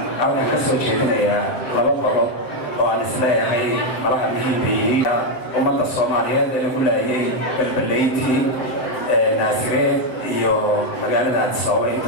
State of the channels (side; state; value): right; late; 7.7 ms